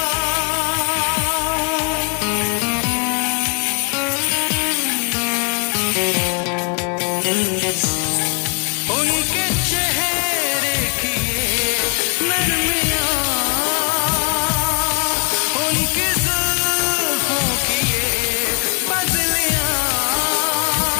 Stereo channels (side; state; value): right; quieter; 36.3 dB